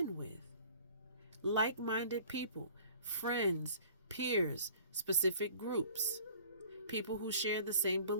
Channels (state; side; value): inverted; both; correlation -0.49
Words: with. Like-minded people, friends, peers, specific groups, people who share the same